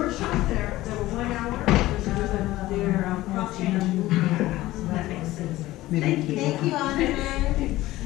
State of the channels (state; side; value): quieter; right; 16.9 dB